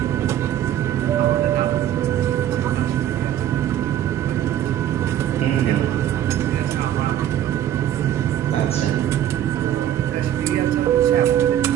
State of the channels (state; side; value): quieter; left; 11.4 dB